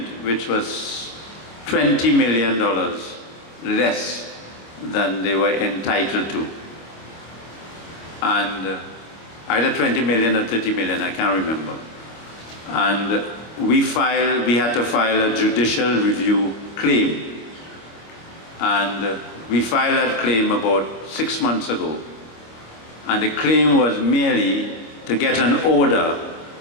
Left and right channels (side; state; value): right; late; 26 ms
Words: which was $20 million less than they were entitled to. And either 20 million or 30 million, I can't remember. And we had to file a judicial review claim. And we filed that claim about 6 months ago. And the claim was merely to get an order